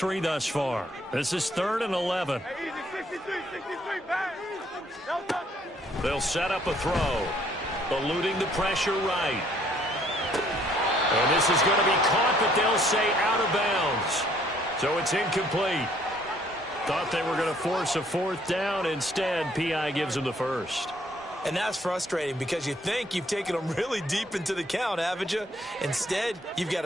thus far. This is 3rd and 11. They'll set up a throw, eluding the pressure right. And this is going to be caught, but they'll say out of bounds. So it's incomplete. Thought they were going to force a 4th down. Instead, P.I. gives them the first. And that's frustrating because you think you've taken them really deep into the count, haven't you? Instead, you've got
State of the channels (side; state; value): both; normal; correlation 0.64